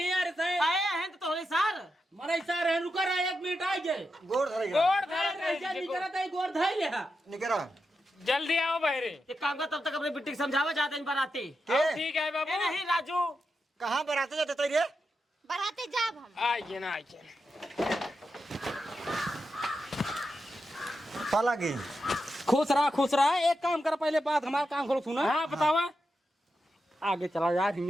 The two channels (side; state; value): both; normal; correlation 0.87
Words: यार से। आए हैं तो तोरे सर मरे सर है, रुका रहा 1 मिनट आ जाए। गोड़ धरेगा गोड़ धर निकला था गोड़ धर ले। निकरा जल्दी आओ बहरे। एक काम कर तब तक अपने बिट्टी समझावा जाते हैं बराती। के ठीक है बाबू। नहीं राजू कहाँ बराते जाते तो रे बराते जाब हम। आइए ना आइए। साला की खुश रहा। एक काम कर पहले बात हमारा काम करो सुना। हाँ बतावा। आगे चला यार